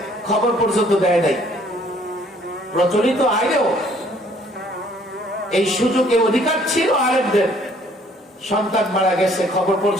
খবর পর্যন্ত দেয় নাই। প্রচলিত আইনেও এই সুযোগে অধিকার ছিল আলেমদের, সন্তান মারা গেছে খবর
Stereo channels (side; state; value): both; normal; correlation 0.60